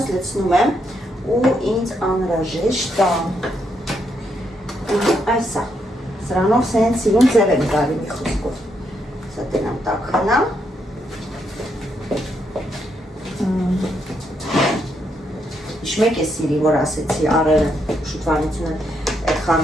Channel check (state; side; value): normal; both; correlation 0.78